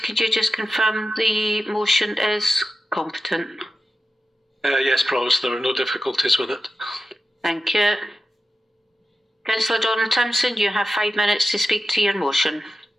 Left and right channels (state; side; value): normal; both; correlation 0.92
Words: you just confirm the motion is competent? Yes, Provost, there are no difficulties with it. Thank you. Councillor Doran-Timson, you have 5 minutes to speak to your motion.